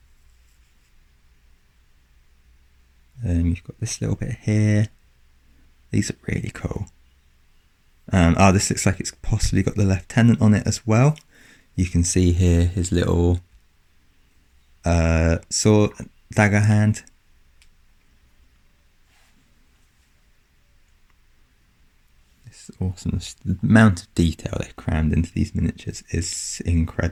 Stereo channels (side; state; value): both; identical; correlation 1.00